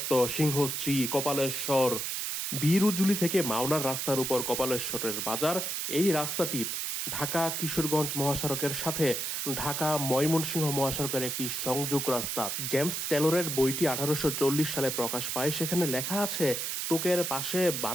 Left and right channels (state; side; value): noise; right; hiss, 2 dB below the sound